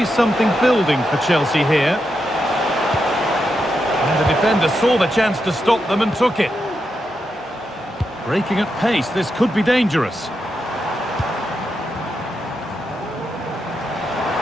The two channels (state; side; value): normal; both; correlation 0.85